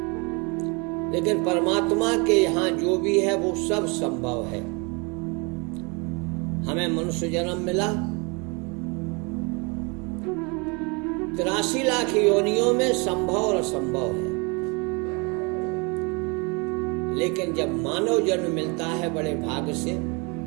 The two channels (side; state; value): left; quieter; 30.4 dB